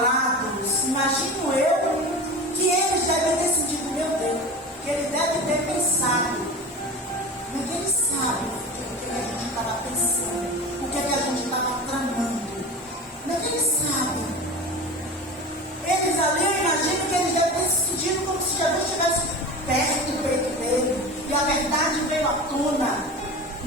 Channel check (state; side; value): normal; both; correlation 0.32